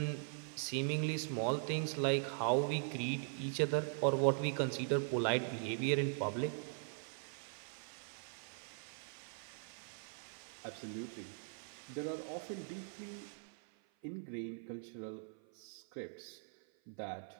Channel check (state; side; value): silent; left; 50 dB below the other